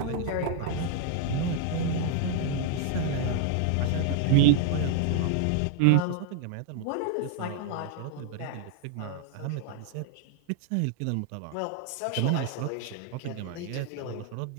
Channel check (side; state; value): both; different; correlation 0.00